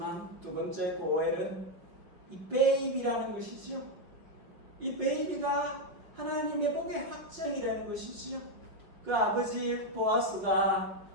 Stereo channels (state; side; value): late; left; 5.7 ms